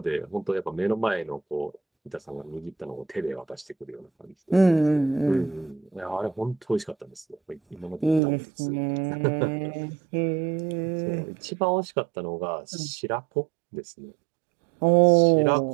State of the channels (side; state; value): left; drops out; at 8.2 s